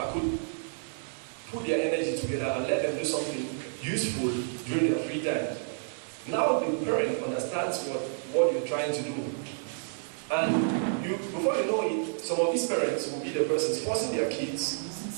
could put their energy together and let them do something useful during their free time. Now the parent understands what you're trying to do. And before you know it, some of these parents will be the persons forcing their kids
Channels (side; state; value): left; silent; digital silence